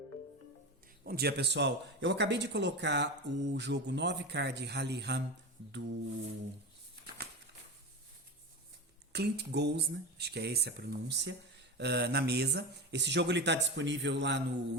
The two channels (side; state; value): both; normal; correlation 0.24